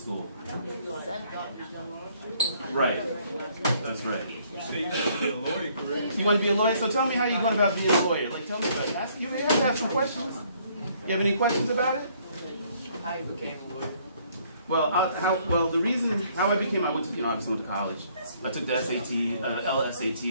Right. That's right. So you want to be a lawyer, correct? You want to be a lawyer? So tell me how you're going about being a lawyer. Like, tell me about it. You have to have some questions. You have any questions about it? How you became a lawyer? Well, the reason how I became, I went to college. I took the SAT, LSATs, which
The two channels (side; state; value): both; inverted; correlation -0.64